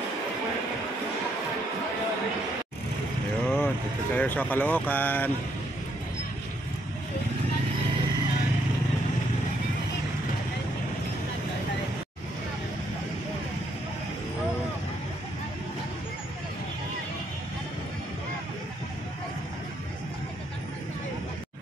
Dito tayo sa Caloocan.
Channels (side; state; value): both; normal; correlation 0.73